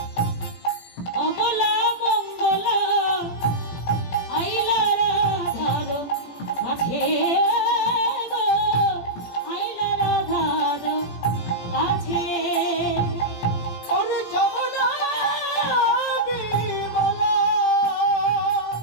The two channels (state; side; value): late; right; 18 ms